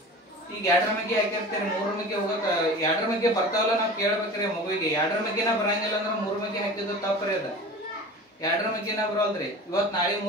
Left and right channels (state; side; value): normal; both; correlation 0.37